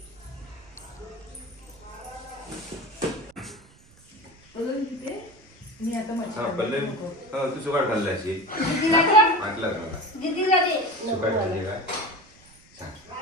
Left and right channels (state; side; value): noise; right; rumble, 27 dB below the sound